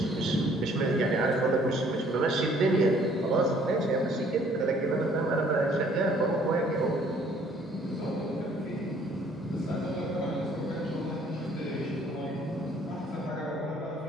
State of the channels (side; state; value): both; normal; correlation 0.60